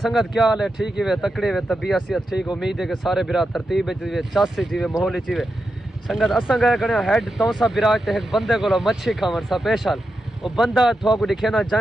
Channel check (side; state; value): both; normal; correlation 0.88